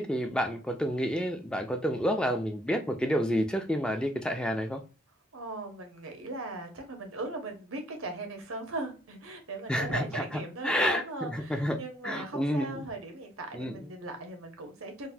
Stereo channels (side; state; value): both; normal; correlation 0.68